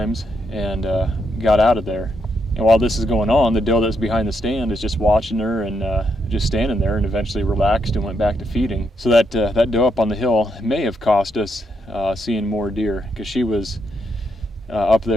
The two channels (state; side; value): normal; both; correlation 0.79